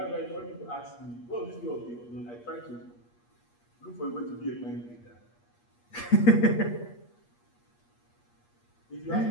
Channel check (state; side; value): late; right; 8.4 ms